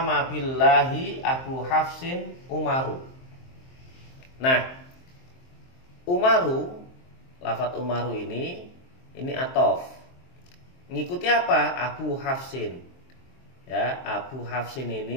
billahi Abu Hafsin Umaru. Nah, Umaru, lafadz Umaru ini ataf. Ngikuti apa? Abu Hafsin. Ya, Abu Hafsin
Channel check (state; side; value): late; right; 23 ms